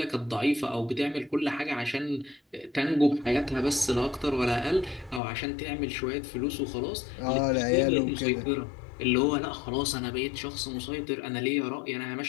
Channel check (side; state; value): right; drops out; at 5.2 s